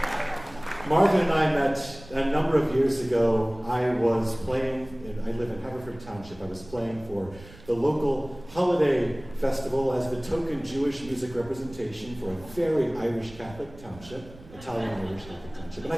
Marvin and I met a number of years ago. I was playing, I live in Haverford Township. I was playing for the local holiday festival as the token Jewish music representation for a very Irish Catholic township, Italian Irish Catholic township. And I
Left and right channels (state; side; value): noise; right; rumble, 19 dB below the sound